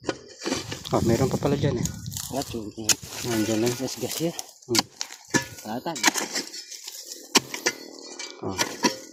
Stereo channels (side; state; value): both; identical; correlation 1.00